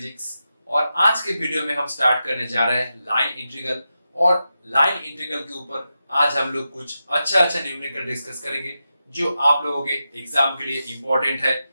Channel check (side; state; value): both; inverted; correlation -0.89